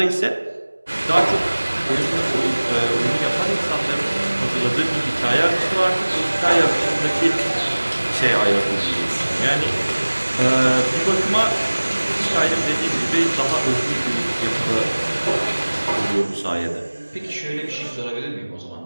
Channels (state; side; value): inverted; both; correlation -1.00